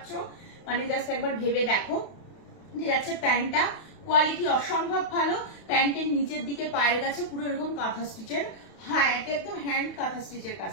মানে জাস্ট একবার ভেবে দেখো। যাচ্ছে প্যান্টটা, কোয়ালিটি অসম্ভব ভালো। প্যান্টের নিচের দিকে পায়ের কাছে পুরো এরকম কাঁথা স্টিচের, হ্যাঁ এটা একদম হ্যান্ড কাঁথা স্টিচের কাজ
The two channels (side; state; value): right; late; 31 ms